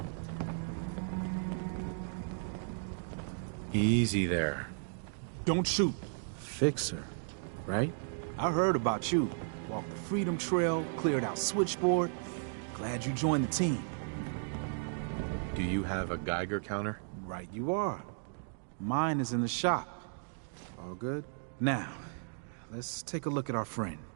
Easy there. Don't shoot. Fixer, right? I heard about you. Walked the Freedom Trail, cleared out Switchboard. Glad you joined the team. Do you have a Geiger counter? Right you are. Mine is in the shop. All good? Now, let's take a look at our friend.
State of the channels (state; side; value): silent; left; digital silence